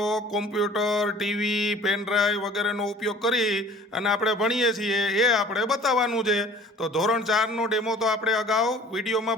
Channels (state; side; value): normal; both; correlation 0.48